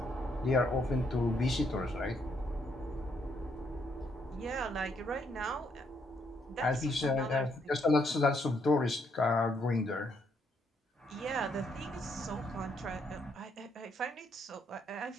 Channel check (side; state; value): both; normal; correlation 0.73